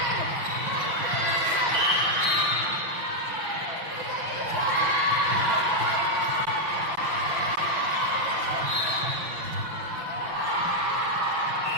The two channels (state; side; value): late; left; 5.9 ms